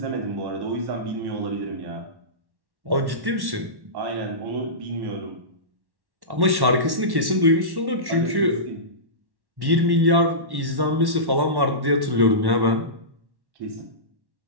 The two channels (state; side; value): late; left; 1.1 ms